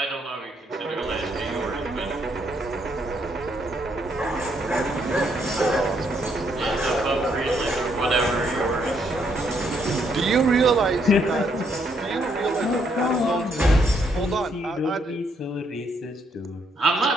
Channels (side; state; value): both; normal; correlation 0.72